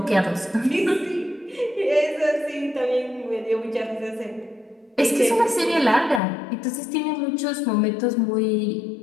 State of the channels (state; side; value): drops out; right; at 6.2 s